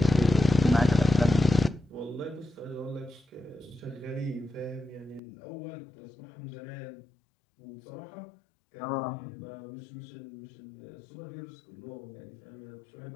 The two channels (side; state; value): right; drops out; at 5.2 s